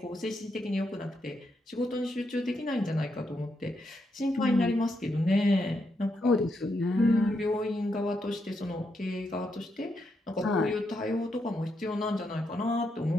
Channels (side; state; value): both; normal; correlation 0.81